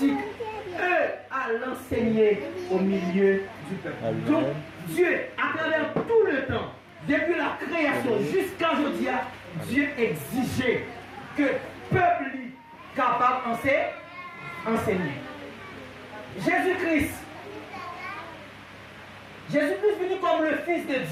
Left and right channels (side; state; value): both; identical; correlation 1.00